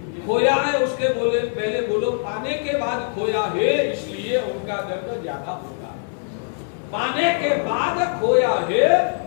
खोया है, उसके बोले पहले बोलो पाने के बाद खोया है, इसलिए उनका दर्द ज्यादा होगा। पाने के बाद खोया है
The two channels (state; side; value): silent; right; 64 dB below the other